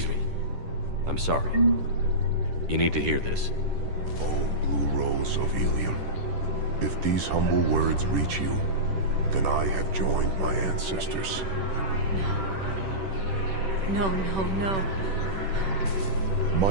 me. I'm sorry. You need to hear this. Oh, blue rolls of helium. If these humble words reach you, then I have joined my ancestors. No, no, no.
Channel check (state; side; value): late; left; 10 ms